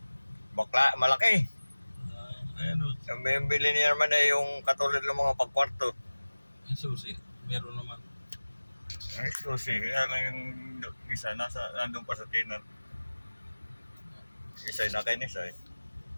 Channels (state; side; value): inverted; both; correlation -1.00